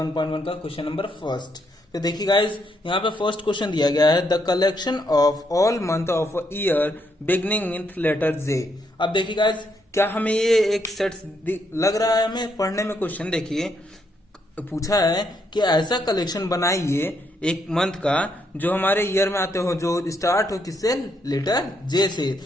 का क्वेश्चन नंबर फर्स्ट। तो देखिए गाइस, यहाँ पे फर्स्ट क्वेश्चन दिया गया है the collection of all month of year beginning with letter J. अब देखिए गाइस, क्या हमें ये एक सेट लग रहा है हमें पढ़ने में? क्वेश्चन देखिए, पूछा है कि ऐसा कलेक्शन बनाइए एक मंथ का जो हमारे ईयर में आते हो, जो स्टार्ट हो किससे? लेटर जे से।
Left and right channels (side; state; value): both; normal; correlation 0.76